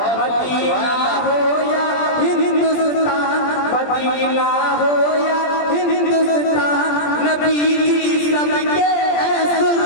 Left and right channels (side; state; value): right; late; 20 ms